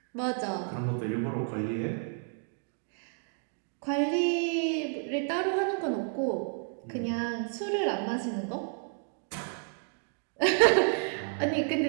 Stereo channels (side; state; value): left; silent; 57 dB below the other